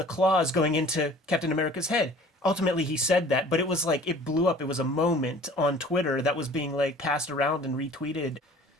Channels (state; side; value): normal; both; correlation 0.49